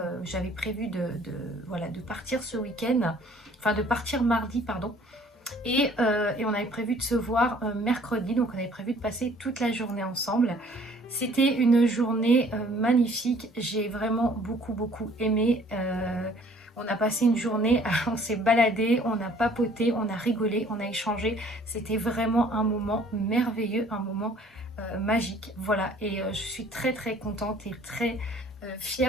j'avais prévu voilà, de partir ce week-end, enfin de partir mardi, pardon, et on avait prévu de se voir mercredi, donc on avait prévu de passer toute la journée ensemble. C'était une journée magnifique, j'ai vraiment beaucoup aimé. On a passé une journée, on s'est baladé, on a papoté, on a rigolé, on a échangé. C'était vraiment un moment merveilleux, un moment magique. Voilà, et je suis très contente et très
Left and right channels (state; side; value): normal; both; correlation 0.56